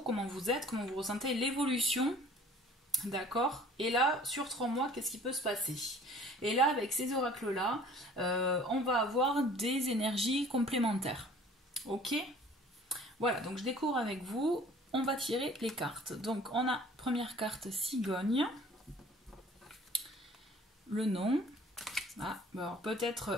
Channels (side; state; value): both; normal; correlation 0.50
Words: comment vous êtes, comment vous ressentez, l'évolution, d'accord. Et là, sur 3 mois, qu'est-ce qui peut se passer? Et là, avec ces oracles-là, on va avoir des énergies complémentaires. Ok? Voilà, donc je découvre avec vous, on va tirer les cartes. Donc, on a première carte cigogne, le nom.